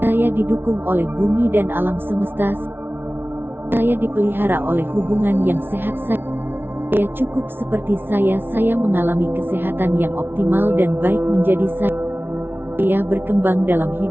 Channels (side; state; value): left; late; 0.11 ms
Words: Saya didukung oleh bumi dan alam semesta. Saya dipelihara oleh hubungan yang sehat. Saya cukup seperti saya mengalami kesehatan yang optimal dan baik menjadi saya berkembang dalam